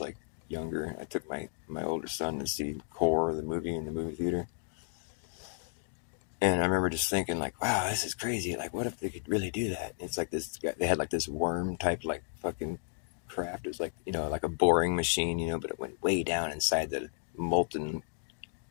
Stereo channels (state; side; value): silent; right; 56 dB below the other